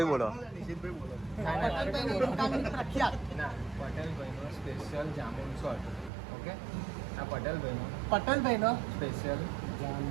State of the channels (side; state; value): left; drops out; at 6.1 s